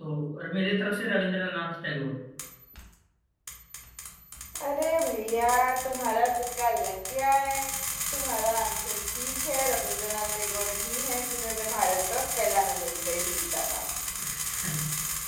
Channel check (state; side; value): identical; both; correlation 1.00